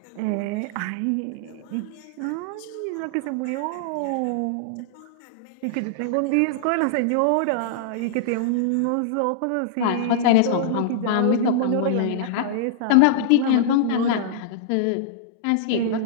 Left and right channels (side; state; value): both; different; correlation -0.02